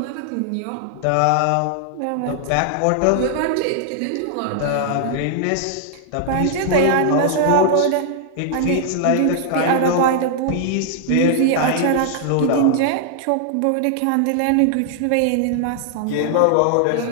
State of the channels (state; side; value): different; both; correlation -0.01